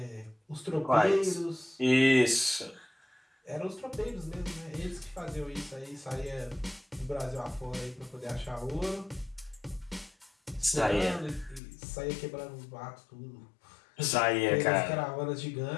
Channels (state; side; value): drops out; right; at 11.6 s